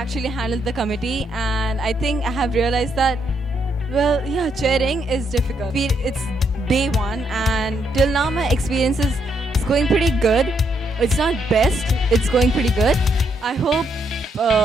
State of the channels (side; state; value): both; normal; correlation 0.76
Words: handle the committee, and I think I have realized that, well, yeah, chairing is difficult. It's day 1, and till now my experience is going pretty good. It's not best, it's going pretty good. I hope